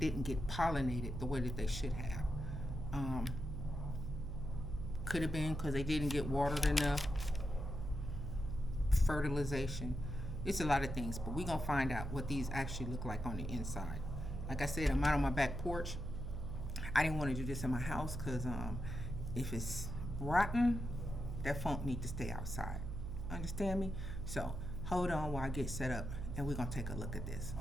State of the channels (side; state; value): right; noise; hum, 5 dB below the sound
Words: get pollinated the way that they should have. Um, could have been because they didn't get watered enough, fertilization. It's a lot of things, but we're going to find out what these actually look like on the inside. Like I said, I'm out on my back porch. I didn't want to do this in my house because if it's rotten, that funk need to stay outside. Understand me? So hold on while I get set up and we're going to take a look at this.